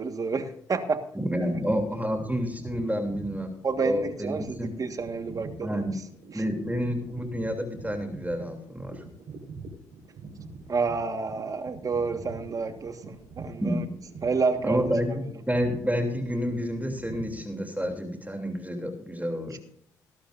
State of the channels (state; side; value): normal; both; correlation 0.81